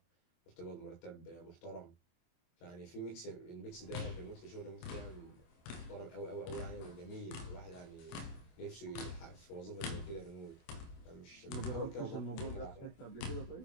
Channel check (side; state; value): right; late; 24 ms